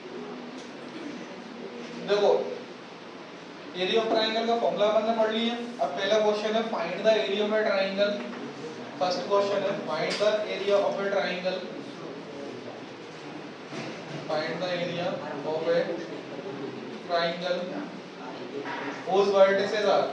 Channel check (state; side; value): identical; both; correlation 1.00